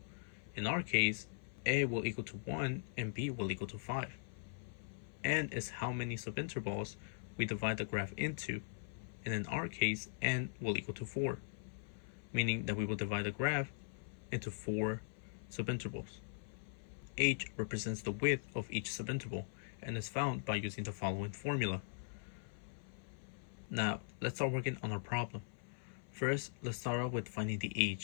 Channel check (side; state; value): right; silent; 51 dB below the other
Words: In our case, A will equal to 1 and B will equal to 5. N is how many subintervals we divide the graph into, and in our case, N will equal to 4, meaning that we will divide the graph into 4 subintervals. H represents the width of each subinterval and is found by using the following formula. Now, let's start working on our problem. First, let's start off with finding the